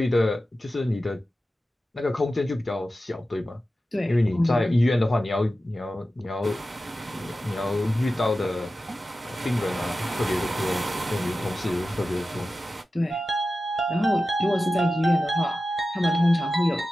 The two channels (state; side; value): normal; both; correlation 0.93